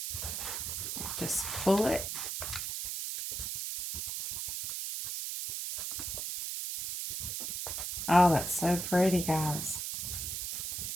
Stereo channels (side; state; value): right; noise; hiss, 4 dB below the sound